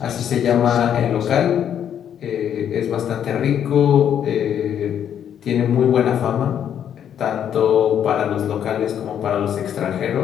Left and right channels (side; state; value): right; quieter; 9.3 dB